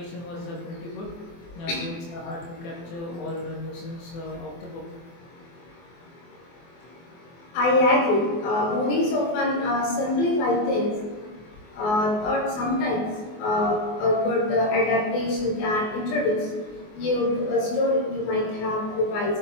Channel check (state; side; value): late; right; 24 ms